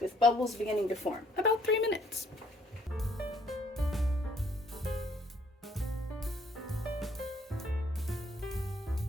with bubbles beginning to form. About 3 minutes.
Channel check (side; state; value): both; normal; correlation 0.64